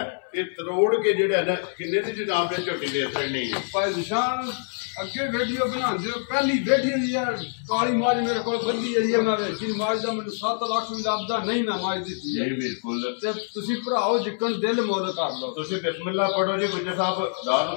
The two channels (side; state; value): right; silent; 61 dB below the other